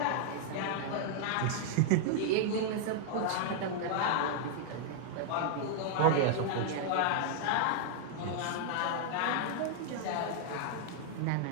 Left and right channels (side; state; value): both; different; correlation -0.01